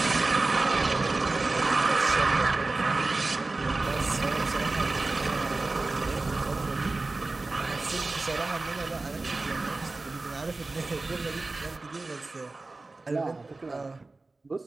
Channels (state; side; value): quieter; left; 3.3 dB